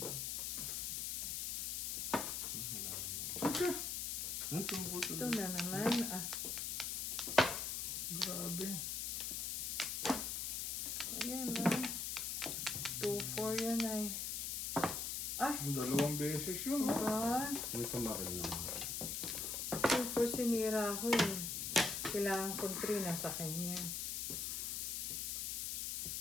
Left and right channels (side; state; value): left; noise; hiss, 1 dB below the sound